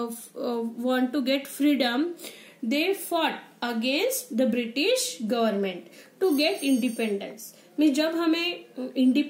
to get freedom, they fought against the British government to get independence. में जब हमें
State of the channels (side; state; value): both; identical; correlation 1.00